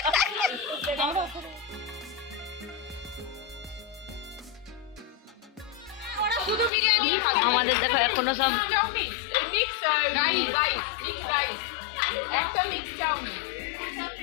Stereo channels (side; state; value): right; drops out; at 6.7 s